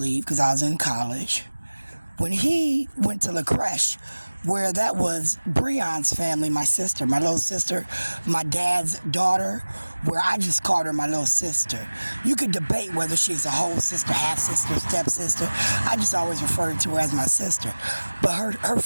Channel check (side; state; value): both; inverted; correlation -1.00